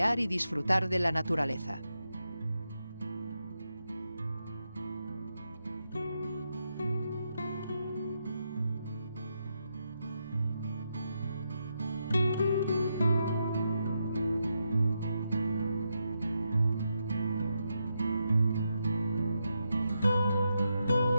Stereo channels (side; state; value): both; inverted; correlation -0.84